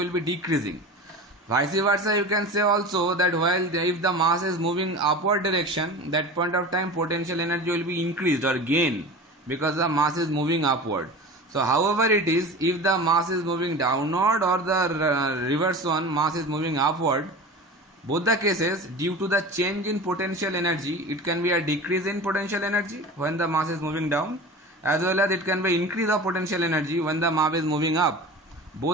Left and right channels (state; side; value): normal; both; correlation 0.34